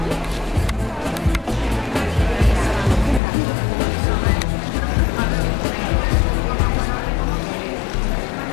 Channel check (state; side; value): drops out; right; at 3.2 s